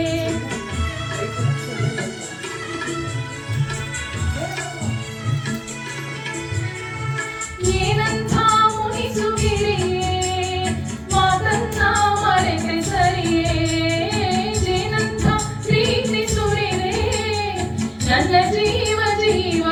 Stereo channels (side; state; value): both; identical; correlation 1.00